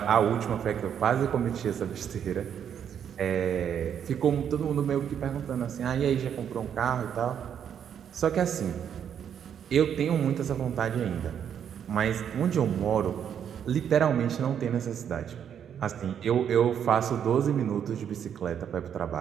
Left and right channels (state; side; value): quieter; left; 8.6 dB